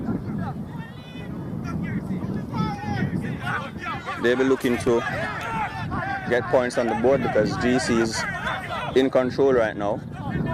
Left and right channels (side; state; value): both; identical; correlation 1.00